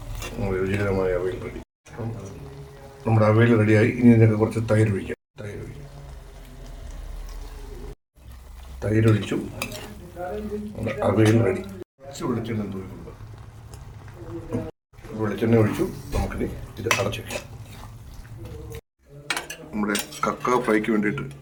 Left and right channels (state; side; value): identical; both; correlation 1.00